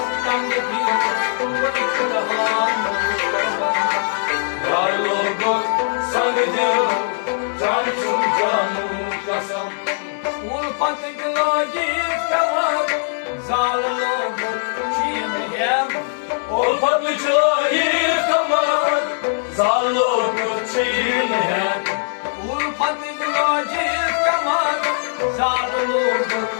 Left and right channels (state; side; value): silent; right; 66 dB below the other